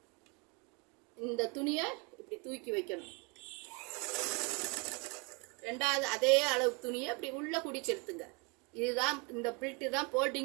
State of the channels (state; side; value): quieter; left; 31.2 dB